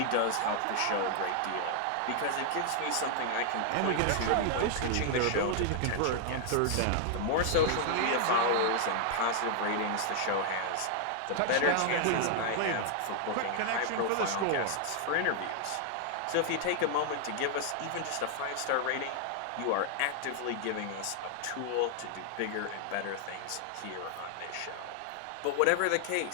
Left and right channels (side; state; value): both; different; correlation 0.00